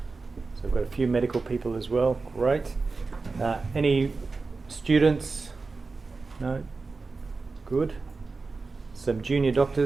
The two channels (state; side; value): quieter; left; 4.0 dB